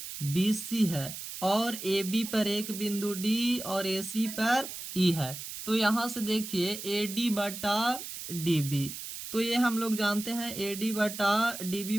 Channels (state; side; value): noise; right; hiss, 9 dB below the sound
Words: B C है और ए बी पर एक बिंदु डी और ए सी पर ई है। तो यहाँ से देखिए ए डी बटा डी बी, तो ये हम लोग जानते हैं ए डी बटा डी बी